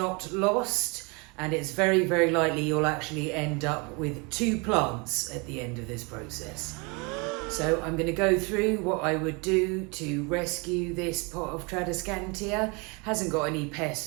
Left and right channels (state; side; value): quieter; left; 30.1 dB